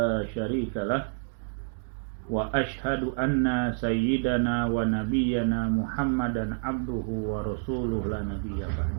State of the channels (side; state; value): left; silent; digital silence